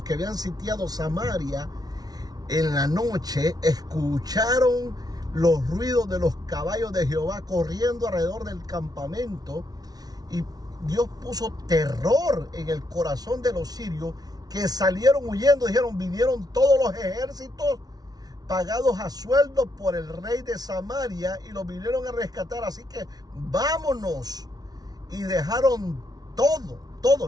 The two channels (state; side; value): late; left; 0.19 ms